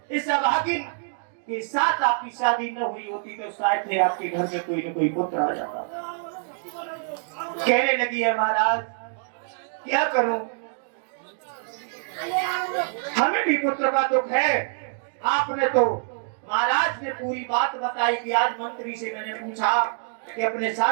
इस अभागिन कि साथ आपकी शादी न हुई होती तो शायद थे आपके घर में कोई न कोई पुत्र आ जाता। कहने लगी है महाराज क्या करूं, हमें भी पुत्र का दुख है। आपने तो महाराज ने पूरी बात बताई कि आज मंत्री से मैंने पूछा कि अपने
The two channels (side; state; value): left; silent; digital silence